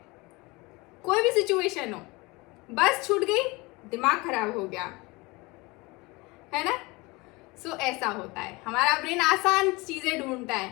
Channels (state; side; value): quieter; right; 24.3 dB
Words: कोई भी सिचुएशन हो, बस छूट गई, दिमाग खराब हो गया, है ना। सो ऐसा होता है, हमारा ब्रेन आसान चीजें ढूंढता